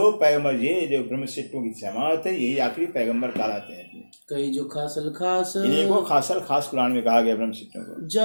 पैगंबर, ये जो ब्रह्मशिष्टों की जमात है, यही आखिरी पैगंबर कहलाते हैं। कई जो खासल खास। इन्हीं को खासल खास कुरान में कहा गया ब्रह्मशिष्टों को।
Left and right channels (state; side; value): inverted; both; correlation -1.00